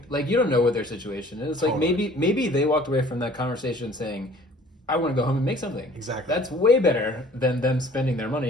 like, you don't know what their situation is. Like, maybe they walked away from that conversation saying, I want to go home and make something. Exactly. That's way better than them spending their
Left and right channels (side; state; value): both; normal; correlation 0.52